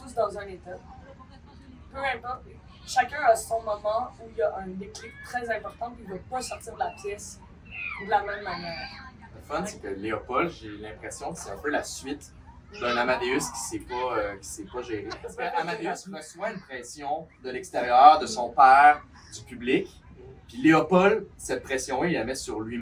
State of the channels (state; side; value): identical; both; correlation 1.00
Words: tous dans un état. Peu importe, chacun a son moment où il y a un déclic très important puis il ne va pas sortir de la pièce de la même manière. Le fun, c'est que Léopold, j'ai l'impression que c'est un peu la suite d'un Amadeus qui s'est pas géré. Parce qu'Amadeus reçoit une pression de l'extérieur, de son père, du public. Puis Léopold, cette pression-là, il la met sur